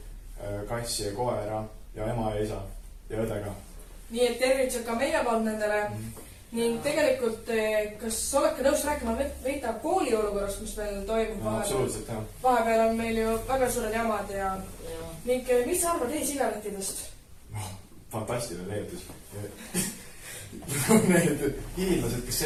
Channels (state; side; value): identical; both; correlation 1.00